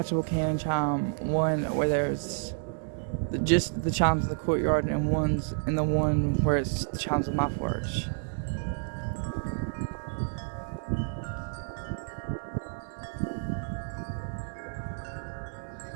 cannon chime, one where there's just the chimes in the courtyard, and the one where it's the chimes on my porch.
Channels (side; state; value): left; silent; digital silence